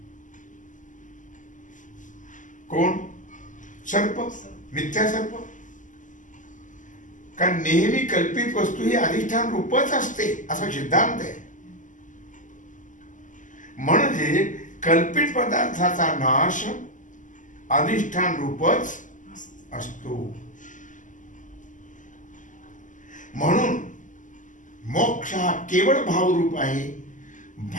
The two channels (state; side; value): late; right; 0.37 ms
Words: कोण? सर्प, मिथ्या सर्प. कारण नेहमी कल्पित वस्तू ही अधिष्ठान रूपच असते असा सिद्धांत आहे. म्हणजे कल्पित पदार्थाचा नाश अधिष्ठान रूपच असतो. म्हणून मोक्ष हा केवळ भावरूप आहे,